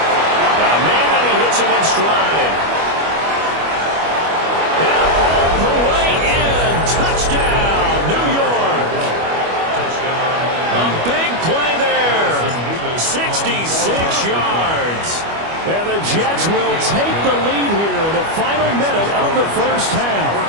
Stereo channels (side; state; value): left; late; 25 ms